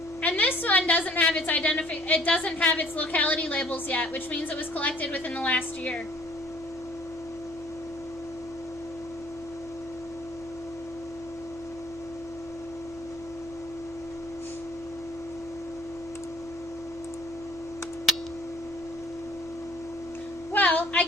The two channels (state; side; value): normal; both; correlation 0.55